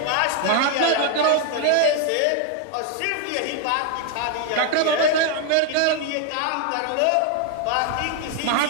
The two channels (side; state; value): both; different; correlation 0.00